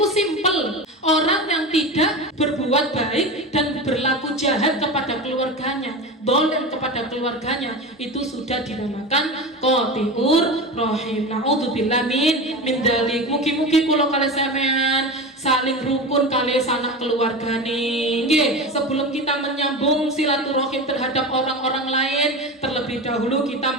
simpel. Orang yang tidak berbuat baik dan berlaku jahat kepada keluarganya, dolem kepada keluarganya, itu sudah dinamakan qati'ur rahim. Na'udzubillah min dzalik. Mugi-mugi kula kalih sampean saling rukun kali sanak keluargane. Nggih, sebelum kita menyambung silaturahim terhadap orang-orang lain, terlebih dahulu kita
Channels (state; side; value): normal; both; correlation 0.26